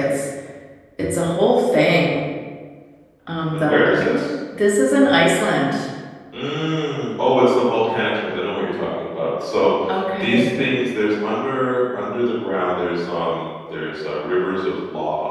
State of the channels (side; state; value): both; identical; correlation 1.00